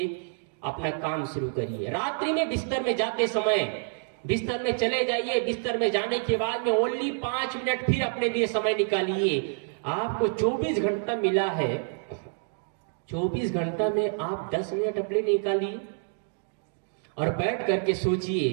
अपना काम शुरू करिए। रात्रि में बिस्तर में जाते समय बिस्तर में चले जाइए। बिस्तर में जाने के बाद में ओनली 5 मिनट फिर अपने लिए समय निकालिए। आपको 24 घंटा मिला है, 24 घंटा में आप 10 मिनट अपने निकालिए और बैठ करके सोचिए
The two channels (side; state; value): left; silent; digital silence